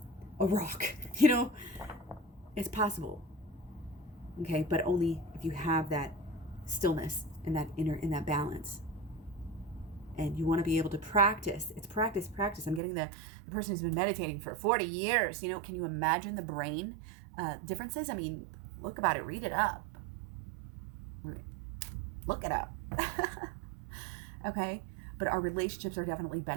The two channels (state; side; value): drops out; left; at 12.8 s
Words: a rock, it's possible. Okay. But only if you have that stillness and that inner, and that balance. And you want to be able to practice. It's practice. I'm getting the person who's been meditating for 40 years. Can you imagine the brain differences? I mean, look about it. Read it up. Look it up. Okay? But our relationships are definitely